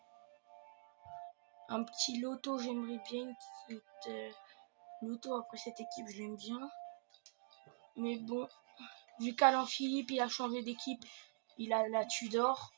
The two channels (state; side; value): silent; left; digital silence